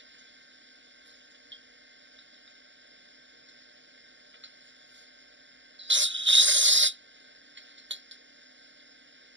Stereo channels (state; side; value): late; left; 0.54 ms